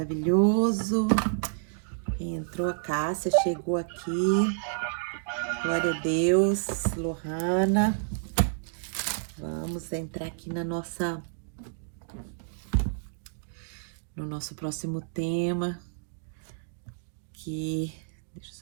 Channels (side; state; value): left; silent; digital silence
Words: Quem entrou? A Cássia chegou aqui. Glória a Deus, Lohana. Vamos entrar aqui no nosso próximo tema, que deixa eu